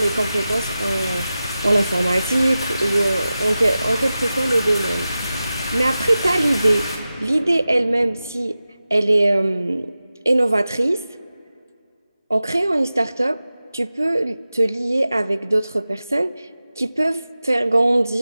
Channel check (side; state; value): both; inverted; correlation -0.94